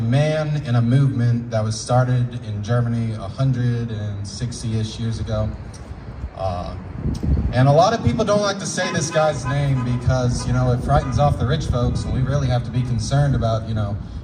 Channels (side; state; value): both; identical; correlation 1.00